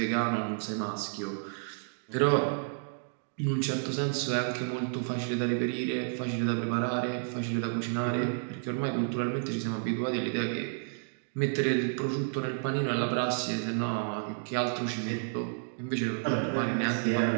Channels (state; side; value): silent; left; digital silence